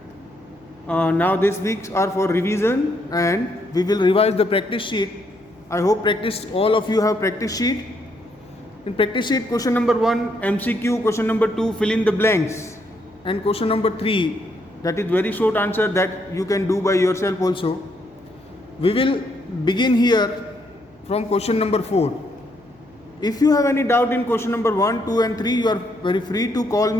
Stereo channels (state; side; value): noise; left; hum, 29 dB below the sound